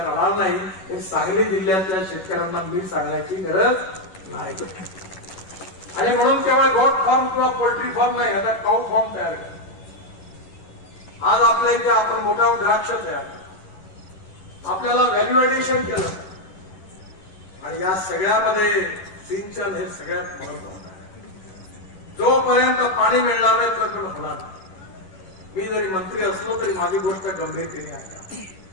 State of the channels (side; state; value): right; late; 11 ms